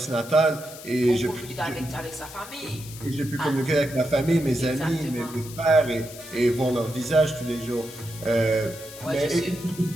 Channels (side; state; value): left; noise; hiss, 15 dB below the sound